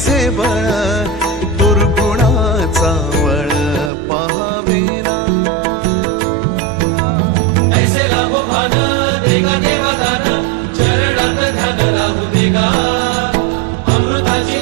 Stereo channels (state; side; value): drops out; left; at 3.9 s